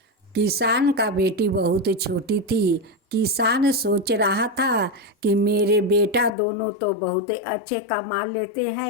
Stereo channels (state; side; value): drops out; right; at 6.4 s